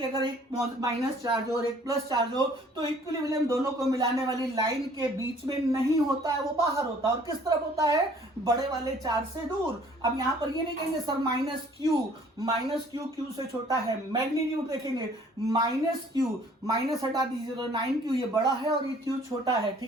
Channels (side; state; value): both; normal; correlation 0.56